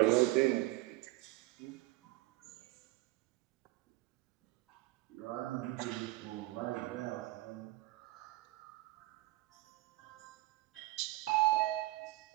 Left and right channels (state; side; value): quieter; left; 19.6 dB